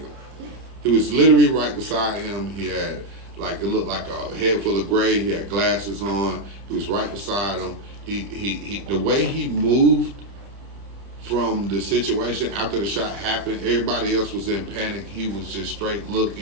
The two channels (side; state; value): left; late; 30 ms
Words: He was literally right beside him. He had it looked like a head full of gray. He had glasses on. He was right beside him. He the way he moved from the situation after the shot happened, everybody else was in panic. He was just straight